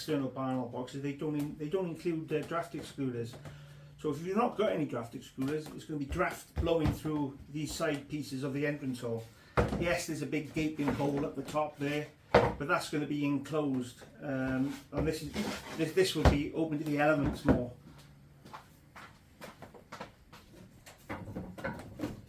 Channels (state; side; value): identical; both; correlation 1.00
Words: barn owl boxes, they don't include draft excluders. So if you've not got any draft excluders, it's going to be draft blowing through these side pieces of the entrance hole. Yes, there's a big gaping hole at the top there, but that's going to be enclosed, and this will be open to the elements more.